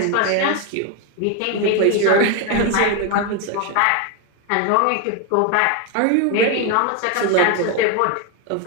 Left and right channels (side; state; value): both; different; correlation 0.02